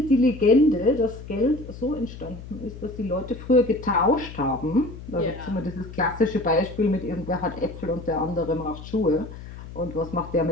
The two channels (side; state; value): left; noise; hum, 13 dB below the sound